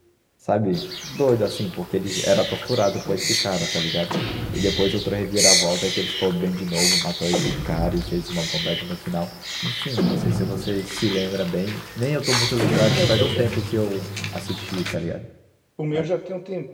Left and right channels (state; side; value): identical; both; correlation 1.00